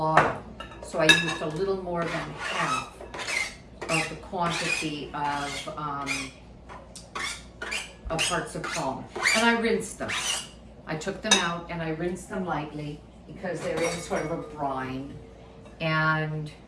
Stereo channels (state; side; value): identical; both; correlation 1.00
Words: so I used a little more than half of the quantity of hearts of palm. And I rinsed them. I took them out and I rinsed them lightly because they're in sort of a brine. And